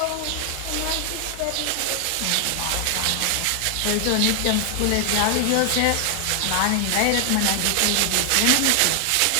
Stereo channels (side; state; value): both; different; correlation 0.00